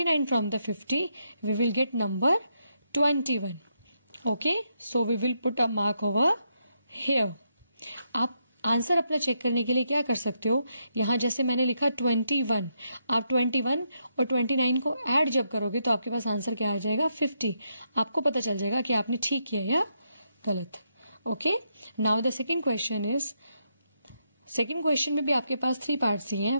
from the 50 we will get number 21. Okay, so we will put a mark over here. आप आंसर अपना चेक करने के लिए क्या कर सकते हो, यहाँ जैसे मैंने लिखा 21, आप 21 और 29 को ऐड जब करोगे तो आपके पास आंसर क्या आ जाएगा 50. आपको पता चल जाएगा कि आपने ठीक किया या गलत. Okay, now the second question is, second question में भी आपके पास 3 पार्ट्स ही हैं.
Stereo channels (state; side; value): inverted; both; correlation -0.79